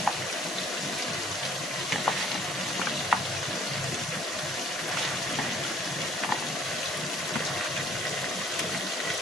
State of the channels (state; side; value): normal; both; correlation 0.58